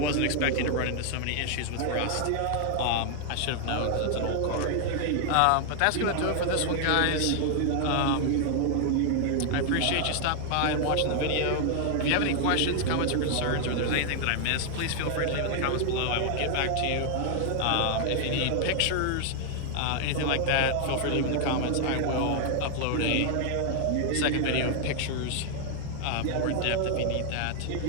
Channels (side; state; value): both; different; correlation 0.00